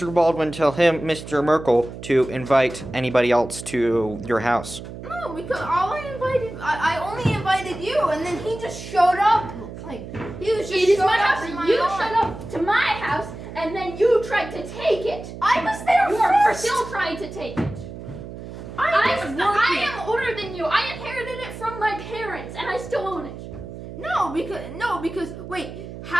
Baldwin, tell him, Mr. Merkel, to invite anybody else to your house? No, because I only invited you, and then he just showed up. Like, he was just It is showed my up house. in my You yard. showed up to my house, and then you tried to take it. I was there You are first. still trying to take it. I was I working. am older tan you. I inherited it from my parents, and I still own it. No, because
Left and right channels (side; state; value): right; noise; hum, 11 dB below the sound